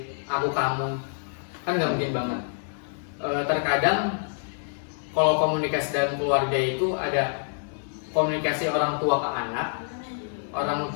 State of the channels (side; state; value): right; silent; digital silence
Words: aku kamu, kan nggak mungkin banget. Terkadang kalau komunikasi dalam keluarga itu ada komunikasi orang tua ke anak, orang